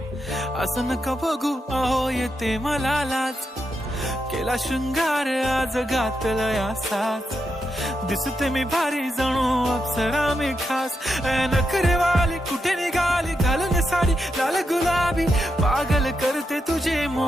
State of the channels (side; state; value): both; normal; correlation 0.85